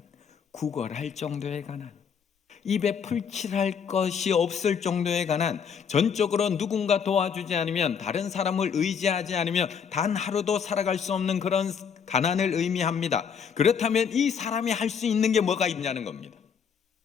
구걸할 정도의 가난, 입에 풀칠할 것이 없을 정도의 가난, 전적으로 누군가 도와주지 않으면, 다른 사람을 의지하지 않으면 단 하루도 살아갈 수 없는 그런 가난을 의미합니다. 그렇다면 이 사람이 할 수 있는 게 뭐가 있냐는 겁니다.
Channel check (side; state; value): right; quieter; 7.0 dB